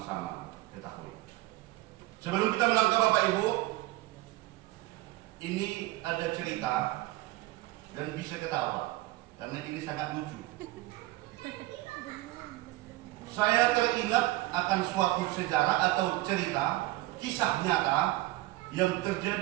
ketahui. Sebelum kita melangkah Bapak Ibu, ini ada cerita dan bisa ketawa karena ini sangat lucu. Saya teringat akan suatu sejarah atau cerita kisah nyata yang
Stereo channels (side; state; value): left; quieter; 18.7 dB